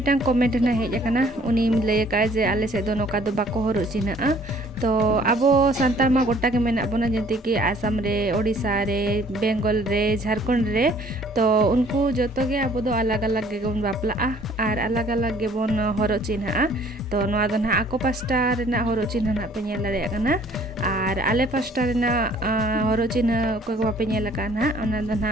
comment na hej akana uni lay ka je ale se do noka do bako horu china to abo santal ma gota ke mena bona jenti ki Assam re Odisha re Bengal re Jharkhand re to unku joto ge abo do alag alag ge gon bapla ar alag alag ge bon horu china to noa do na ako pasta re na horu china na penyel dare akana ar ale pasta re na horu china ko ko penyel akana ona do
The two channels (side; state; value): both; normal; correlation 0.57